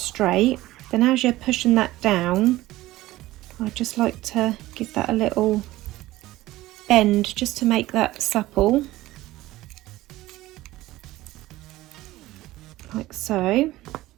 Then as you're pushing that down, I just like to give that a little bend just to make that supple, like so.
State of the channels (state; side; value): quieter; left; 17.0 dB